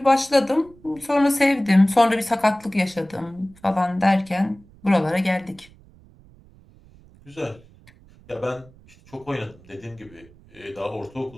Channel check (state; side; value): noise; right; rumble, 26 dB below the sound